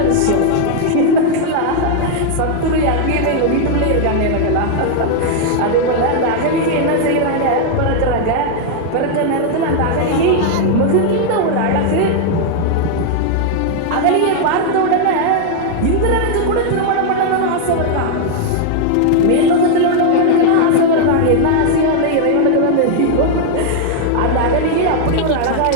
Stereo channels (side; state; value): both; different; correlation 0.00